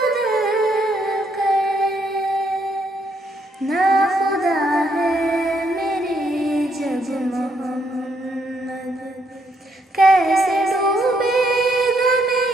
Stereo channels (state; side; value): normal; both; correlation 0.74